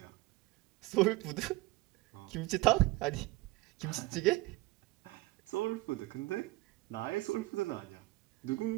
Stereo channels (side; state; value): left; quieter; 20.6 dB